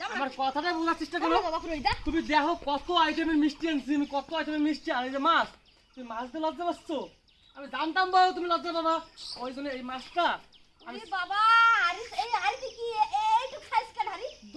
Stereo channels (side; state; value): both; identical; correlation 1.00